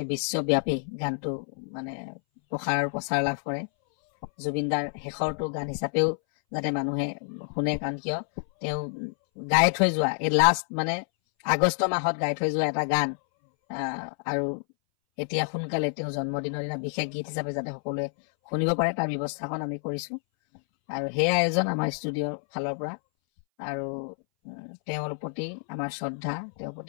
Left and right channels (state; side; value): silent; right; 59 dB below the other